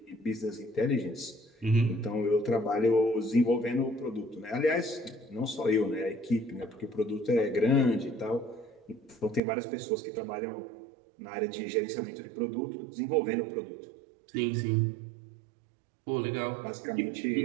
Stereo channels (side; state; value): left; drops out; at 9.4 s